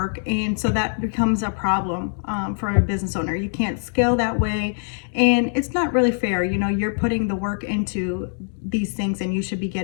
and so that becomes a problem for a business owner. You can't scale that way, and it's not really fair. You're putting the work into these things, and you should be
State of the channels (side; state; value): right; silent; digital silence